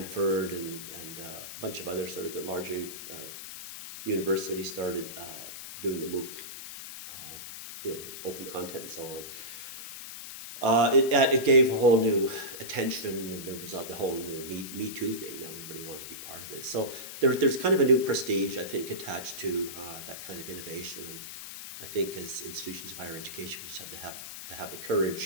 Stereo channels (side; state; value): left; noise; hiss, 10 dB below the sound